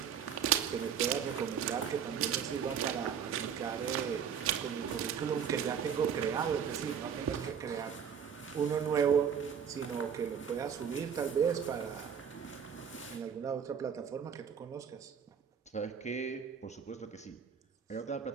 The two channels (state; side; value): quieter; left; 7.6 dB